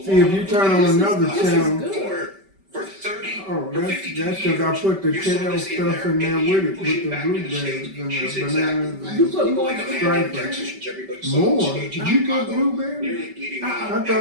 See, if you turn on another channel, for 30 oh, or 52 that's because I put the kale stuff in there with it, with the blueberries and the bananas You put and more stripers. More? You put blueberries? I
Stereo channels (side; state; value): left; late; 5.2 ms